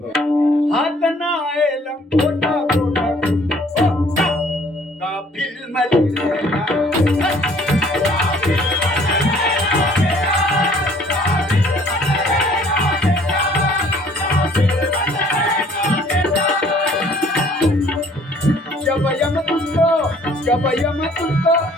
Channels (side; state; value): both; normal; correlation 0.58